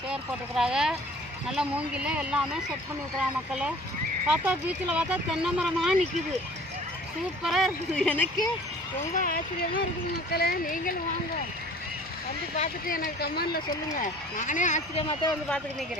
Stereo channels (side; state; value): both; normal; correlation 0.48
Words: சேர் போட்டுருக்குறாங்க. நல்லா மூங்கில் எல்லாமே செட் பண்ணியிருக்கிறாங்க மக்களே. பார்த்தா பீச்சில் பார்த்தா தென்னை மரமாக நிற்கிது. சூப்பராக இருக்குது. எனக்கு ரொம்ப ஆச்சரியமாக இருக்குது மக்களே. நீங்களும் வாங்க, வந்து பார்த்துட்டு எனக்கு கமெண்டில் சொல்லுங்கள். நானே ஆச்சரியமாக தான் வந்து பார்த்துட்டு